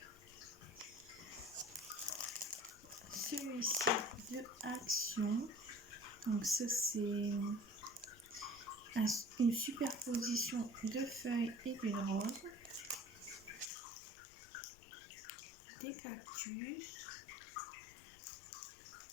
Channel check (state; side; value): drops out; right; at 13.7 s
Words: celui-ci de Action. Donc ça c'est une superposition de feuilles et d'une rose, des cactus.